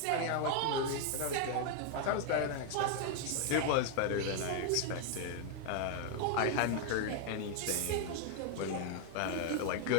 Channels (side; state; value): both; different; correlation 0.00